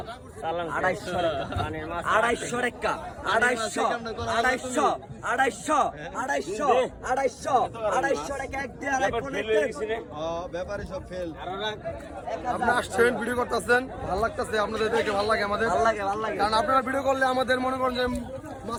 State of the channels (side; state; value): both; identical; correlation 1.00